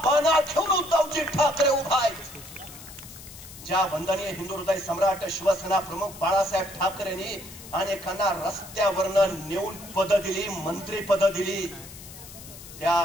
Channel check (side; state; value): left; noise; hiss, 16 dB below the sound